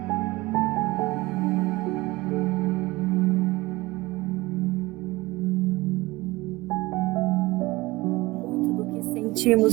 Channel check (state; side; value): quieter; left; 20.8 dB